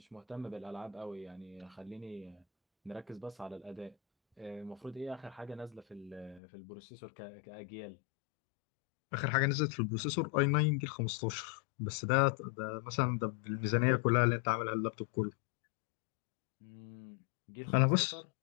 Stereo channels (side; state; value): right; drops out; at 6.4 s